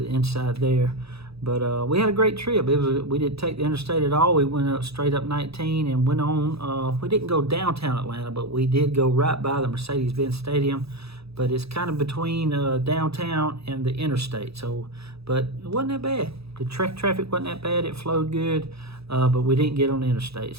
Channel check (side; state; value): left; late; 0.78 ms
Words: the inside there. But we had a great trip. We didn't take the interstate at all. We went up straight up 19 and went on. We didn't go downtown Atlanta, but we did go right by the Mercedes-Benz Stadium. But it's kind of between downtown and the interstate. But it wasn't that bad. The traffic wasn't that bad. It flowed good, but we didn't get on the interstate,